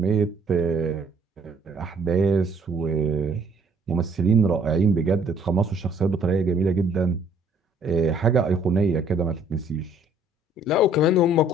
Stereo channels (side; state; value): both; normal; correlation 0.60